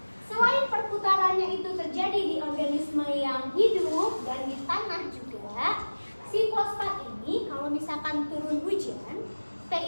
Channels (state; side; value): inverted; both; correlation -1.00